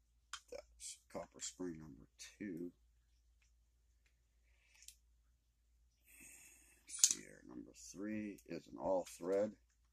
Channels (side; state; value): both; identical; correlation 1.00